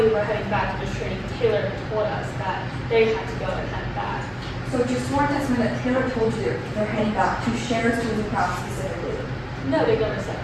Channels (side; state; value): both; identical; correlation 1.00